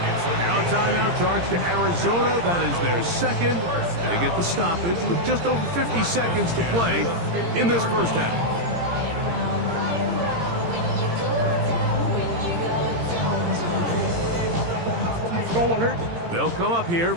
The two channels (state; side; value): late; left; 17 ms